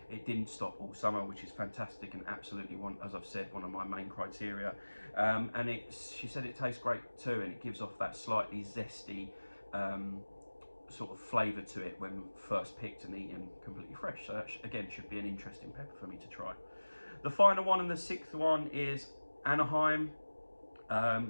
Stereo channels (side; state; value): both; inverted; correlation -1.00